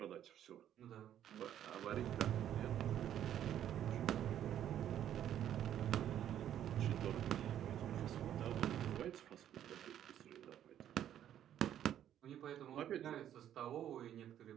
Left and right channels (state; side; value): quieter; left; 10.7 dB